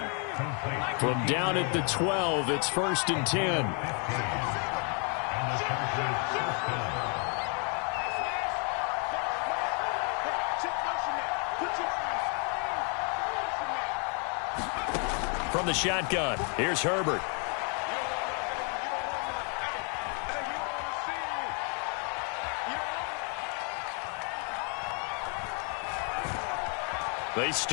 From down at the 12, it's 1st and 10. From the shotgun, here's Herbert. They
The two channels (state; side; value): quieter; right; 38.3 dB